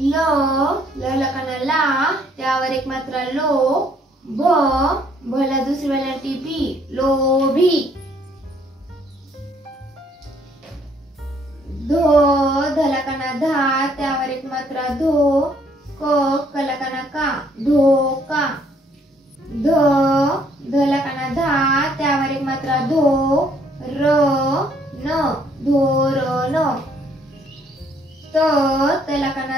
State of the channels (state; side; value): normal; both; correlation 0.65